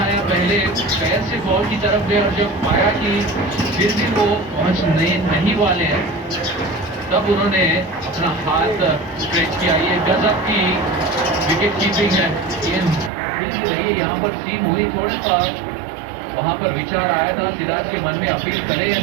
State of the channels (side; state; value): left; drops out; at 13.1 s